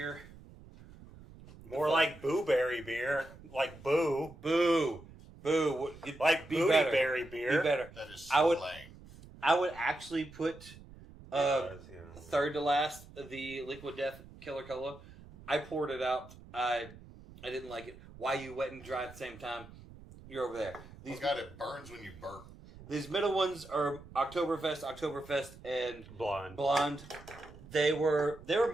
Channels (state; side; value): noise; right; rumble, 19 dB below the sound